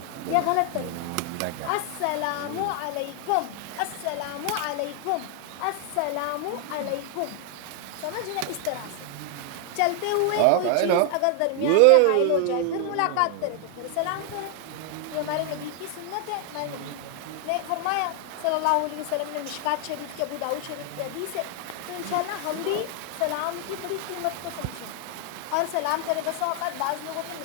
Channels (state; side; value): different; both; correlation 0.00